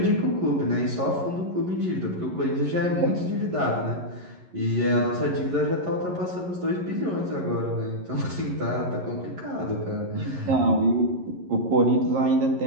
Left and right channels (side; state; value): left; late; 11 ms